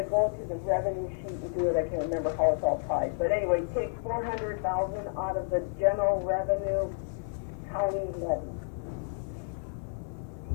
go to the revenue sheet and do it. I can't remember how it's all tied, but anyway, take 400,000 out of the general revenue county levy.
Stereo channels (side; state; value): right; silent; 57 dB below the other